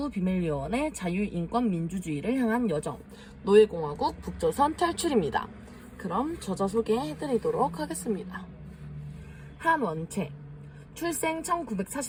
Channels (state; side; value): identical; both; correlation 1.00